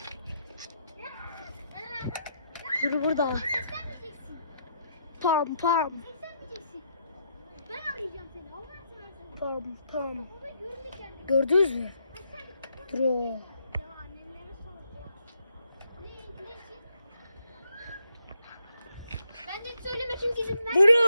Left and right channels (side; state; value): both; inverted; correlation -0.76